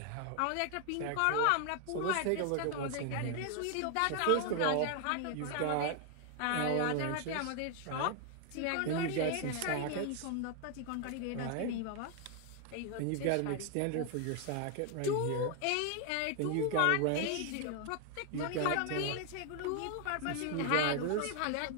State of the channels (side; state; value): both; different; correlation 0.00